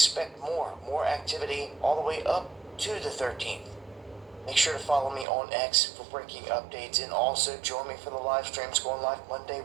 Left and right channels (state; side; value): drops out; left; at 5.2 s